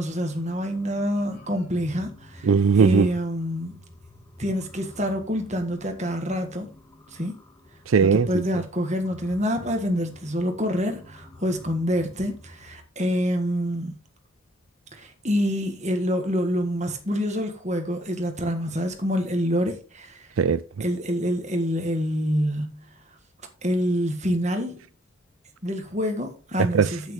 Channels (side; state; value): both; normal; correlation 0.58